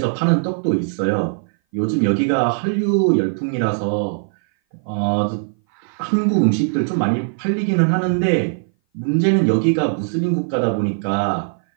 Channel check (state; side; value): silent; left; 59 dB below the other